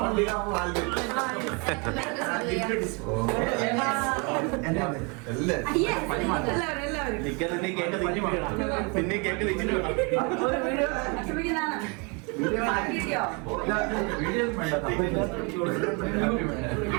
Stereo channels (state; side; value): quieter; left; 32.0 dB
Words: പിന്നെ കേക്ക് വെച്ചിട്ട്